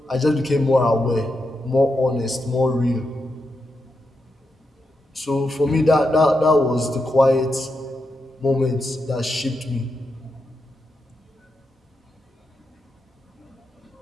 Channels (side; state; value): both; normal; correlation 0.85